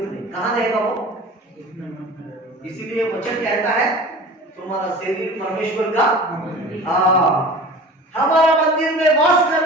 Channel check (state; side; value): normal; both; correlation 0.39